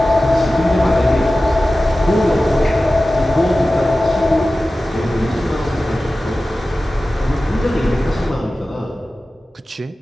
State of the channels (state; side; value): normal; both; correlation 0.95